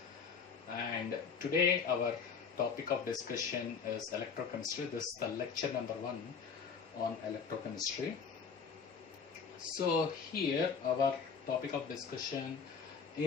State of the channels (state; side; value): quieter; right; 6.0 dB